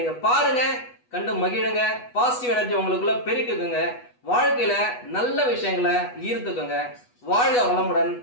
பாருங்க, கண்டு மகிழுங்க, பாசிட்டிவ் எனர்ஜி உங்களுக்குள்ள பெருக்குங்க, வாழ்க்கையில நல்ல விஷயங்களை ஈர்த்துக்குங்க. வாழ்க வளமுடன்.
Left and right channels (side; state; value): right; late; 8.2 ms